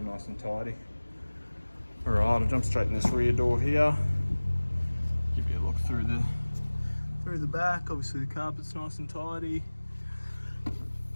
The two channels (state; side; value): inverted; both; correlation -1.00